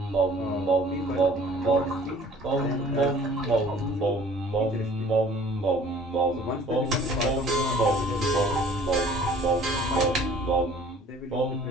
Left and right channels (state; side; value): normal; both; correlation 0.52